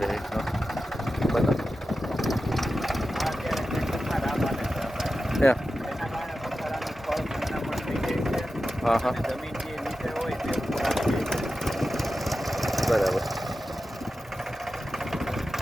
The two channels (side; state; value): both; normal; correlation 0.92